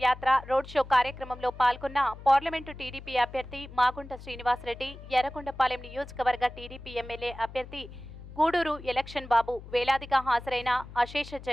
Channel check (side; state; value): left; noise; hum, 15 dB below the sound